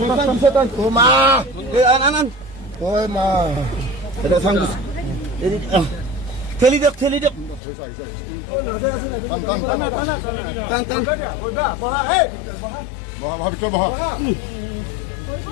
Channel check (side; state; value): right; drops out; at 7.6 s